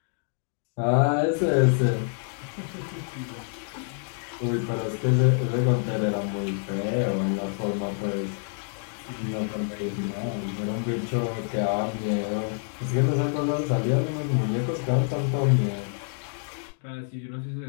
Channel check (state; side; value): silent; right; 60 dB below the other